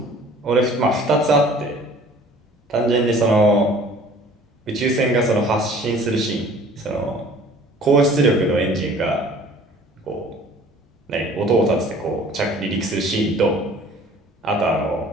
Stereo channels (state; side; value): normal; both; correlation 0.50